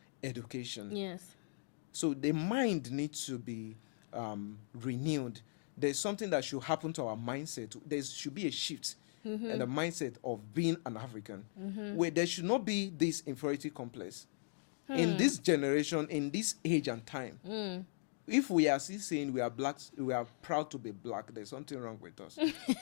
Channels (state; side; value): silent; right; digital silence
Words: education. Yes. So the mind needs to be renewed. There's something that should happen to our mindset. There should be a shift in the mindset of being an African, where there should not be this inferiority complex. In this generation, in this age and time, if we are still saying we are blacks, we are proud to be black, there's something wrong with us.